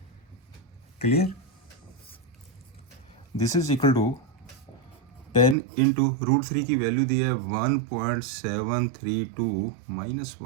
clear, this is equal to 10 into √3 की वैल्यू दी है 1.732 माइनस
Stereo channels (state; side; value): drops out; left; at 5.6 s